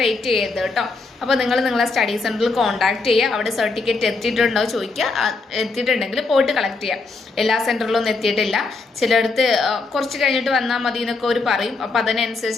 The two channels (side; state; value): right; quieter; 3.8 dB